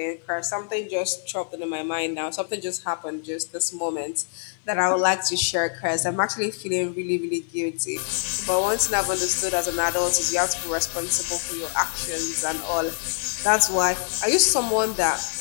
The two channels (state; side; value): silent; right; digital silence